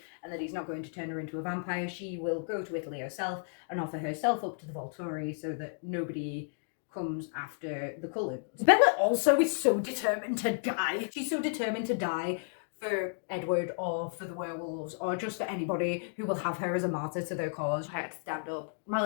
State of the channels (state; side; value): silent; right; digital silence